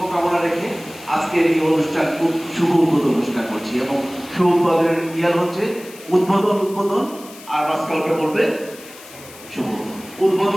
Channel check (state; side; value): noise; left; hiss, 19 dB below the sound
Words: রেখে আজকের এই অনুষ্ঠান খুব শুভ উদ্বোধন ঘোষণা করছি। এবং শুভ উদ্বোধনের ইয়ার হচ্ছে উদ্বোধন, আর স্কাউটে বলবে শুভ